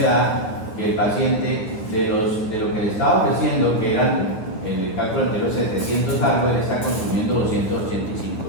da que el paciente de lo que le estaba ofreciendo, que eran en el cálculo anterior 700 algo, él está consumiendo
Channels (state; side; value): late; right; 9.4 ms